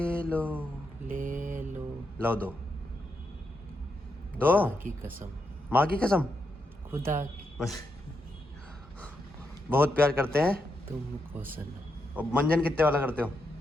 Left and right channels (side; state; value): both; normal; correlation 0.83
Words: लो लो दो खुदा की कसम, माँ की कसम। खुदा की बस बहुत प्यार करते हैं तुमको सनम। और मंजन कितने वाला करते हो?